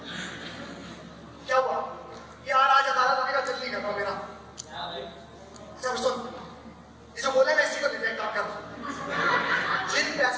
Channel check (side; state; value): both; identical; correlation 1.00